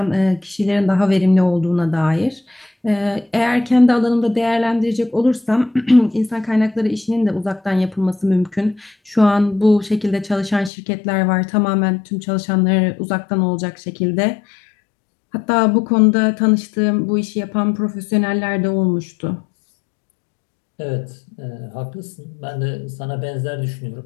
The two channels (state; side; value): drops out; right; at 10.7 s